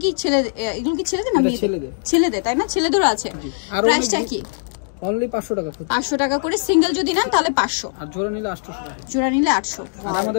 কি ছেলে, এগুলো কি ছেলেদের না মেয়েদের? ছেলেদের, তাই না? ছেলেদেরও আছে। প্রাইসটা কি? অনলি 500 টাকা। 500 টাকা করে সিঙ্গেল যদি নেন তাহলে 500, আর জোড়া নিলে 800 টাকা। জোড়া নিলে 800। আর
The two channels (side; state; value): right; silent; digital silence